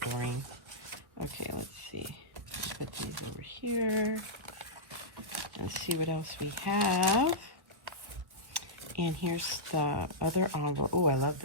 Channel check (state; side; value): late; left; 1.4 ms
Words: Doreen. Okay, let's see. Let's put these over here and see what else we have. And here's the other envelope. Oh, I love